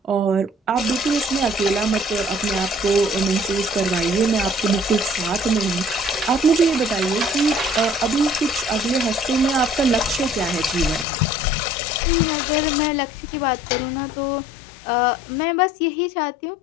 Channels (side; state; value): right; drops out; at 11.1 s